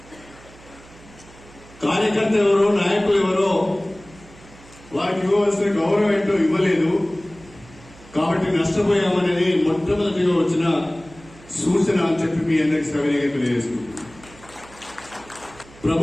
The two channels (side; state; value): right; noise; hum, 23 dB below the sound